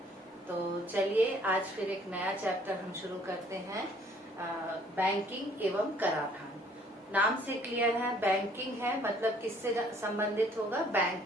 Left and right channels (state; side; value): normal; both; correlation 0.60